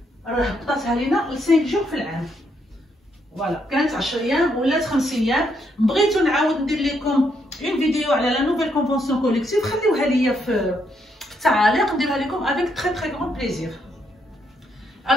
راه حطاتها لينا ل 5 جور في العام. فوالا كانت 10 ايام ولات 5 ايام. بغيتو نعاود ندير لكم اون فيديو على لا نوفيل كونفونسيون كوليكتيف، خليوها ليا في التعاليق نديرها لكم avec très très grand plaisir.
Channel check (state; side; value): normal; both; correlation 0.76